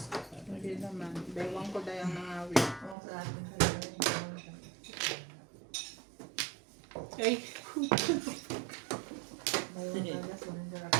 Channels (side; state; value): left; drops out; at 3.0 s